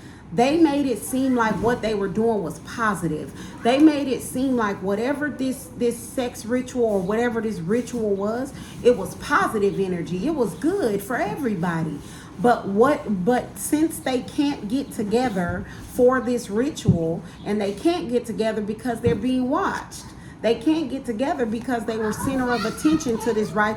they made it seem like what they were doing was positive. They made it seem like whatever this sex ritual or whatever this ritual was, it was positive energy. It was good for everybody. But since they can't get together for this ritual, and they can't get together because they're being watched. They can't get together because they were center of attention to this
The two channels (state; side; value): identical; both; correlation 1.00